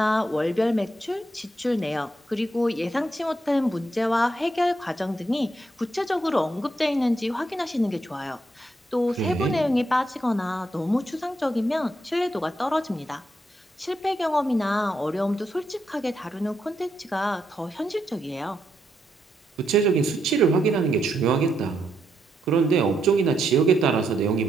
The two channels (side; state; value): both; normal; correlation 0.79